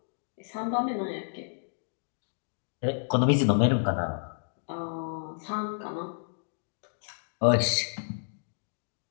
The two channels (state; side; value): silent; right; digital silence